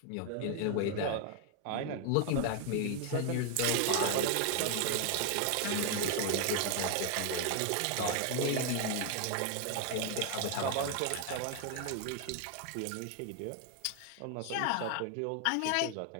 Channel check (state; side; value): different; both; correlation 0.00